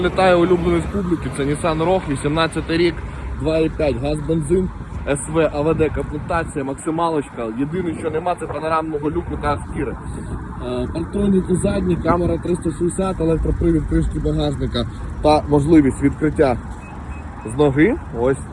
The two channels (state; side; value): identical; both; correlation 1.00